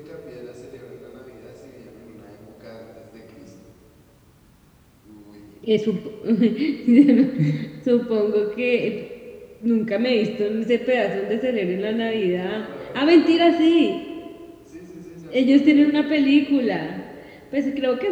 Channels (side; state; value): both; identical; correlation 1.00